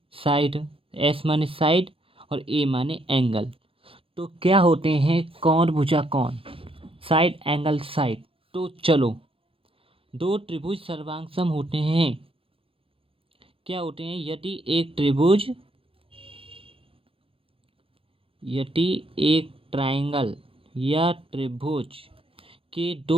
साइड, एस माने साइड और ए माने एंगल। तो क्या होते हैं कौन भुजा कौन, साइड एंगल साइड। तो चलो, दो त्रिभुज सर्वांग होते हैं। क्या होते हैं? यदि एक ट्रायंगल या त्रिभुज के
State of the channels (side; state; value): left; late; 0.27 ms